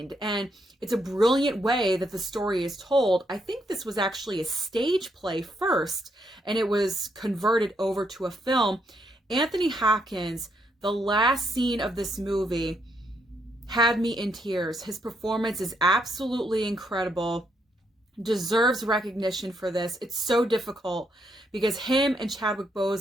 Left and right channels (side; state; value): both; normal; correlation 0.76